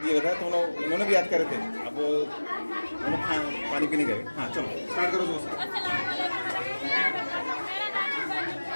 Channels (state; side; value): inverted; both; correlation -1.00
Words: रहा तो उन्होंने भी याद करे थे। अब उन्होंने पानी पीने गए। हाँ चलो स्टार्ट करो दोस्त।